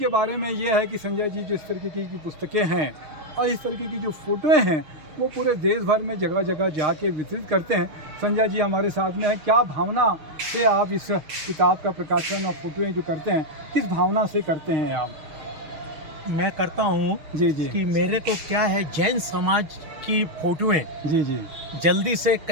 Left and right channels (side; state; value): left; late; 6.5 ms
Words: बारे में ये है कि संजय जी जिस तरीके की पुस्तकें हैं और इस तरीके की जो फोटोएं हैं वो पूरे देश भर में जगह जगह जाके वितरित करते हैं। संजय जी हमारे साथ में है। क्या भावना से आप इस किताब का प्रकाशन और फोटोएं जो करते हैं, किस भावना से करते हैं आप? मैं करता हूँ जी जी कि मेरे को क्या है, जैन समाज की फोटोएं जी जी जल्दी से